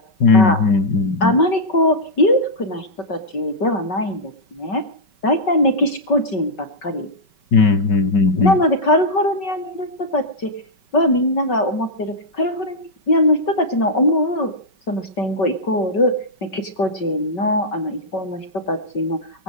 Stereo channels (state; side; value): late; right; 5.2 ms